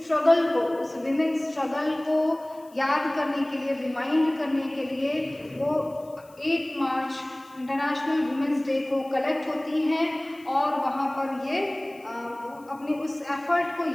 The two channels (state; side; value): noise; left; hiss, 28 dB below the sound